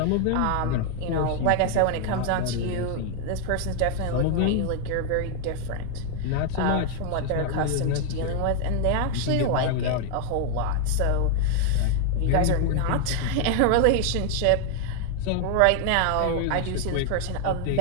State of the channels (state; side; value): different; both; correlation 0.00